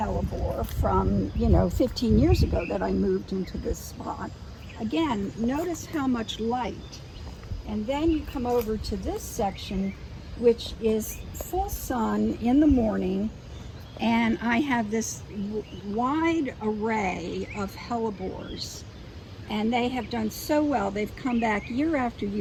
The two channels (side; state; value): both; identical; correlation 1.00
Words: from, 15 years ago that I moved into this spot. Again, notice how much light. And then you come over to this section, which is full sun in the morning, and I have this wide array of hellebores, and they have done so well. They've come back year after